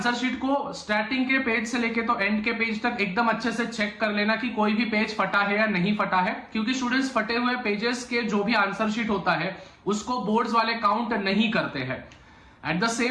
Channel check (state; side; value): identical; both; correlation 1.00